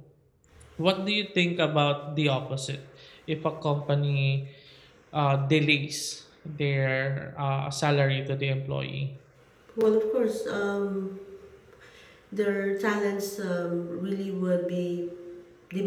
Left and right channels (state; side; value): identical; both; correlation 1.00